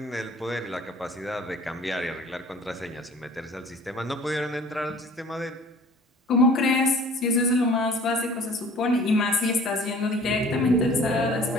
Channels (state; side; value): normal; both; correlation 0.49